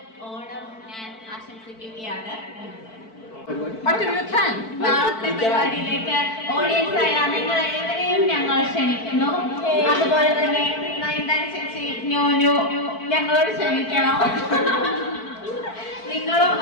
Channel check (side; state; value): right; late; 4.5 ms